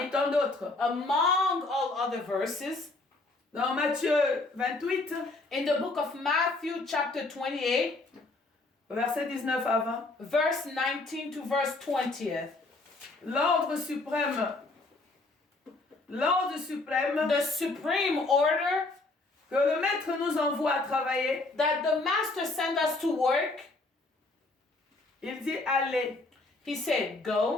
tant d'autres. among all other verses, Dans Matthieu 28, in the book of Matthew, chapter 28, verset 19 à 20. verse 19 to verse 20th. L'ordre suprême, The supreme order que le maître nous envoie à travailler, that the master sent us to work, il dit allez he said,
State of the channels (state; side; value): quieter; right; 3.2 dB